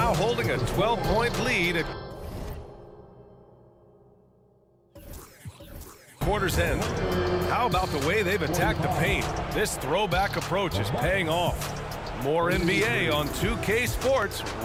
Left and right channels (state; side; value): identical; both; correlation 1.00